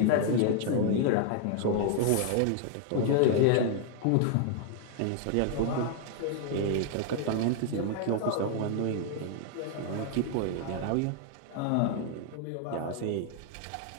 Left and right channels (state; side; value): different; both; correlation 0.00